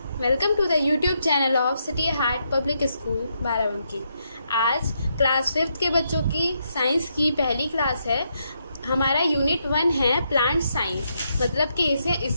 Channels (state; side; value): inverted; both; correlation -0.79